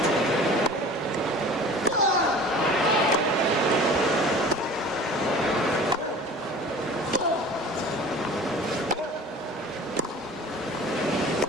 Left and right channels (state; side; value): normal; both; correlation 0.43